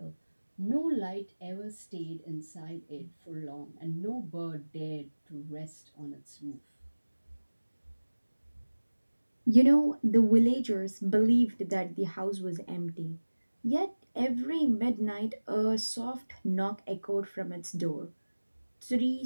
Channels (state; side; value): inverted; both; correlation -1.00